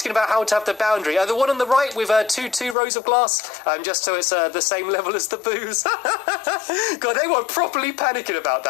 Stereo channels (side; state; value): right; drops out; at 2.8 s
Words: about how to have the boundary. The one on the right with two rows of glass, just so it's the same level as the booze. God, they were properly panicking about